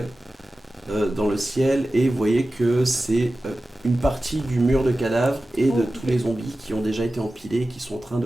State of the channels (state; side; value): normal; both; correlation 0.95